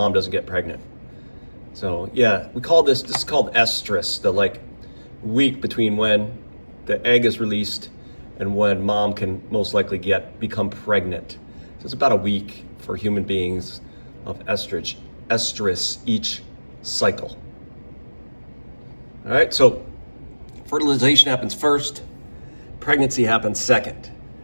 doesn't get pregnant. So yeah, this is called estrus, the week between when the egg is released and when mom can most likely become pregnant. So it's about a week for human beings of estrus each cycle. All right, so fertilization happens first, pregnancy happens second,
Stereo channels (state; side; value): inverted; both; correlation -1.00